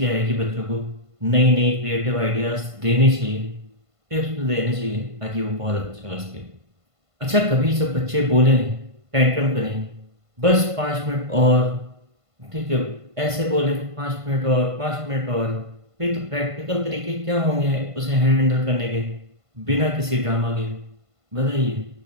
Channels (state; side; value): late; left; 1.5 ms